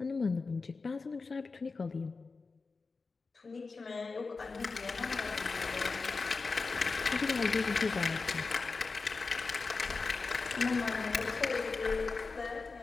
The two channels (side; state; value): right; quieter; 4.2 dB